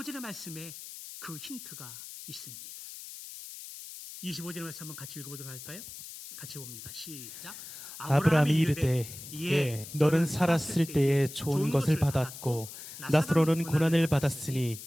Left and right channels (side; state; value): left; noise; hiss, 13 dB below the sound